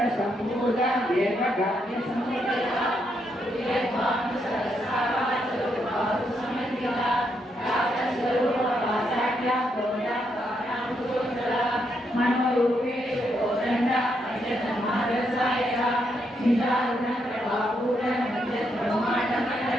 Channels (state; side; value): normal; both; correlation 0.78